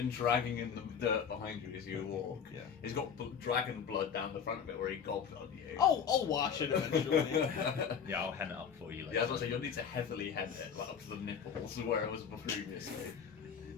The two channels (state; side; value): quieter; right; 7.3 dB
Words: dragging in the dirt behind you as you walk. Yeah. He's got dragon blood down the front of it where he gobbed on you. Oh, I'll wash it eventually. Yeah, I'll hen it up for you later. Yeah, I was gonna say you'll need to heavily head it like up to the nipples where it was previously.